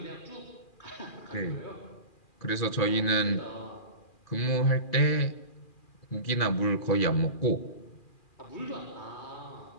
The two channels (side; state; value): right; late; 2.4 ms